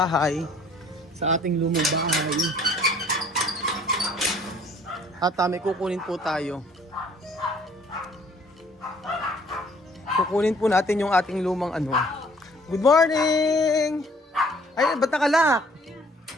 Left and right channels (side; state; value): both; normal; correlation 0.57